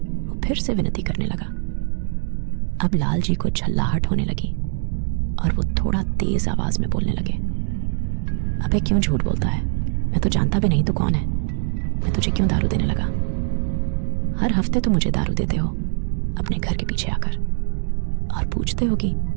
वो फिर से विनती करने लगा। अब लालजी को झल्लाहट होने लगी और वो थोड़ा तेज आवाज में बोलने लगे। अबे क्यों झूठ बोलता है? मैं तो जानता भी नहीं तू कौन है। मैं तुझे क्यों दारू देने लगा? हर हफ्ते तो मुझे दारू देते हो अपने घर के पीछे आकर, और पूछते हो कि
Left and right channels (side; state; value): left; silent; digital silence